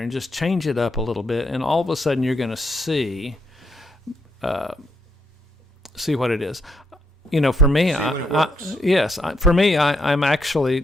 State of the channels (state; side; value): normal; both; correlation 0.77